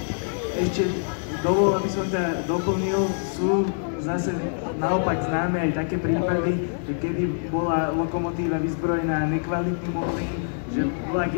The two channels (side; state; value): right; silent; digital silence